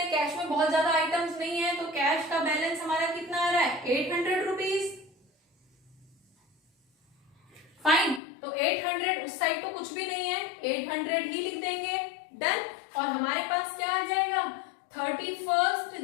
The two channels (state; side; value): drops out; right; at 8.2 s